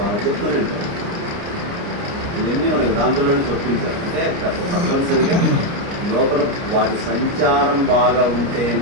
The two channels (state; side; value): late; left; 29 ms